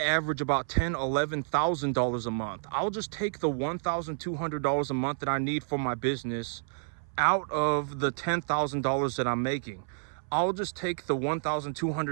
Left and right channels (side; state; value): left; silent; 58 dB below the other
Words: average about $11,000 a month. I'll just take the $1,200 a month that I need for my business out of the $10,000 that I'm making. I'll just take the